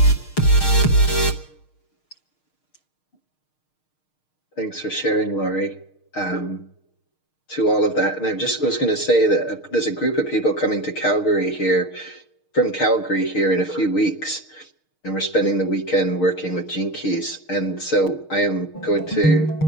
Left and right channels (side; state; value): right; late; 6.5 ms